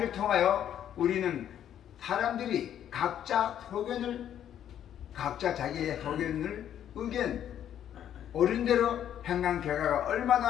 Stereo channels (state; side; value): quieter; right; 10.2 dB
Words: 통하여 우리는 사람들이 각자 자기의 의견 옳은 대로 행한 결과가